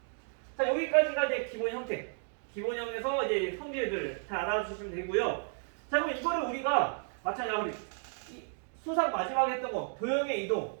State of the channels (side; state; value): left; silent; 56 dB below the other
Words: 자, 여기까지가 이제 기본 형태. 기본형에서 이제 성질들 잘 알아주시면 되고요. 자, 그럼 이거를 우리가 마찬가지로 수상 마지막에 했던 거 도형의 이동을